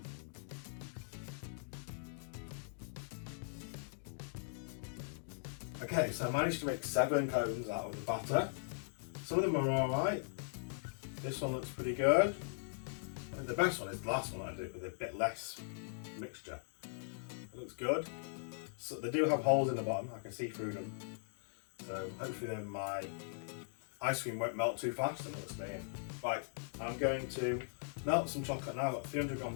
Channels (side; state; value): right; silent; digital silence